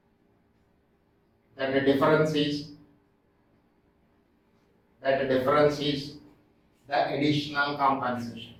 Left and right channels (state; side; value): identical; both; correlation 1.00